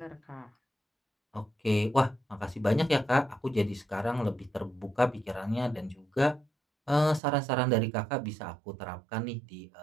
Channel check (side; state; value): left; drops out; at 7.2 s